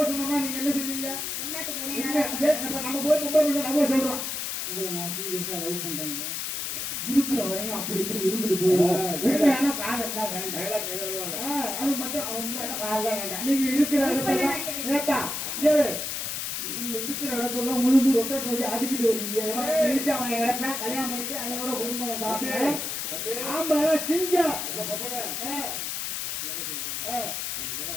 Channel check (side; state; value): left; noise; hiss, 3 dB below the sound